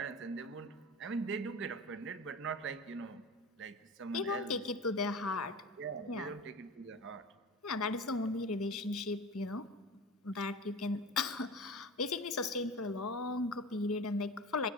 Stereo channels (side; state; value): both; normal; correlation 0.32